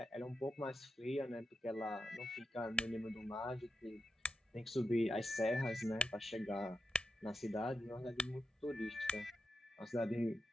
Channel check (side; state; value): both; normal; correlation 0.87